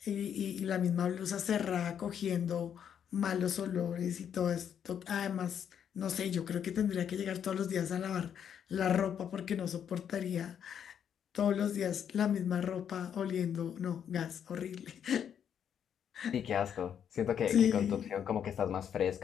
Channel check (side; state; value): right; quieter; 8.6 dB